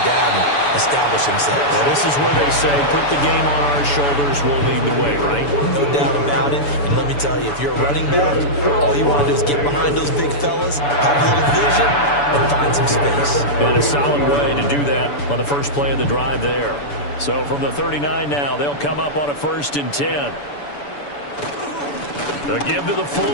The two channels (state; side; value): late; right; 6.9 ms